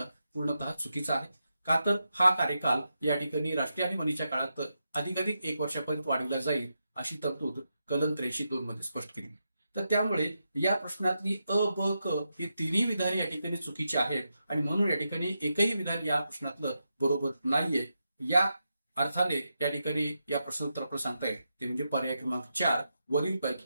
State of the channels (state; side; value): inverted; both; correlation -0.86